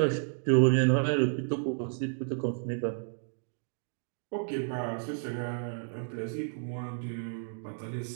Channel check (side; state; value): left; silent; digital silence